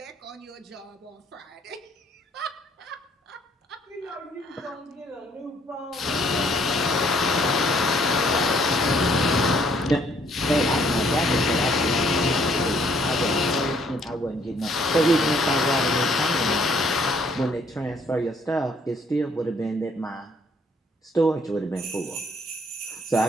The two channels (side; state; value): both; normal; correlation 0.64